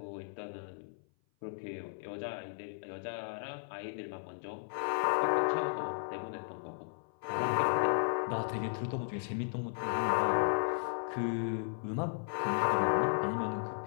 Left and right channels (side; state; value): right; silent; 54 dB below the other